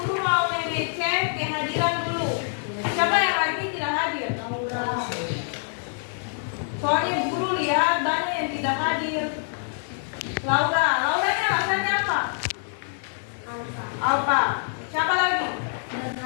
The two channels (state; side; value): silent; right; digital silence